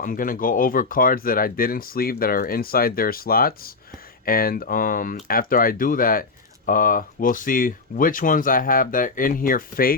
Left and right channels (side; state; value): right; quieter; 4.0 dB